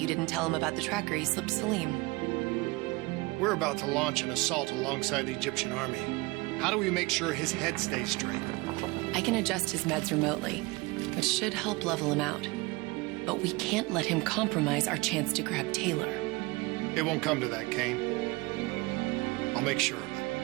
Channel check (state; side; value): quieter; left; 24.0 dB